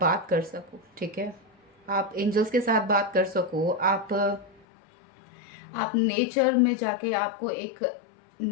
कर सको, ठीक है। आप एंजल्स के साथ बात कर सको, आप नेचर में जाके आपको एक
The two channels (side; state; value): right; drops out; at 4.6 s